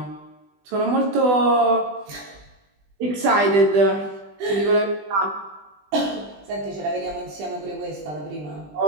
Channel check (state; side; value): late; left; 20 ms